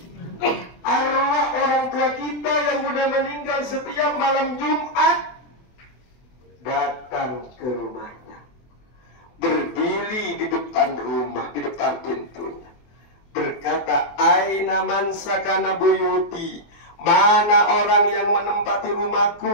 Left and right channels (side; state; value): right; late; 24 ms